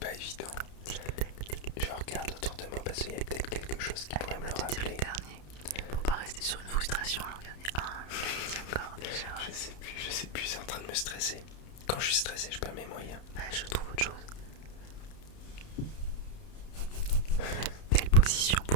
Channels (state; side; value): late; right; 31 ms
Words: évident. Je regarde autour de moi parce qu'il y a peut-être quelque chose qui pourrait me le rappeler. Le dernier. Pour pas rester sur une frustration, alors regardez. Je l'ai dit encore déjà. Je sais plus, c'est en train de me stresser. Quand je suis stressé, je perds mes moyens. Je trouve autre chose. Belle position